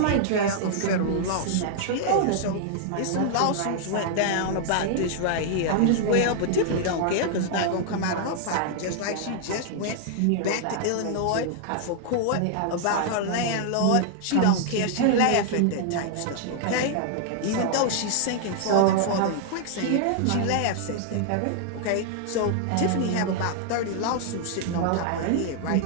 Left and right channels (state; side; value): different; both; correlation 0.00